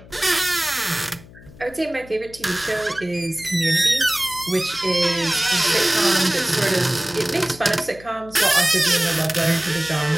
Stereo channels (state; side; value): noise; left; hum, 21 dB below the sound